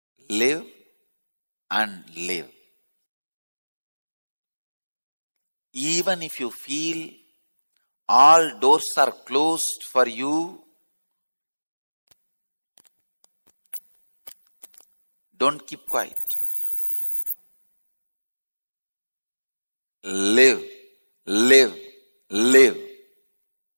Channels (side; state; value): both; inverted; correlation -1.00